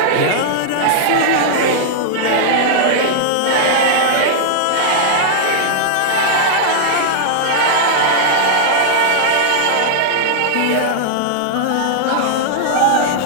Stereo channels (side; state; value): both; different; correlation -0.01